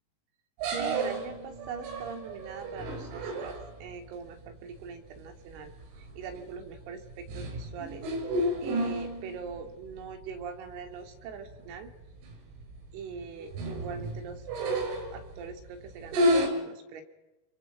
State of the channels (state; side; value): late; left; 19 ms